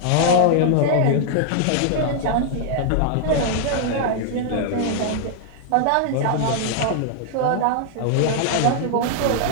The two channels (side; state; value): both; different; correlation -0.01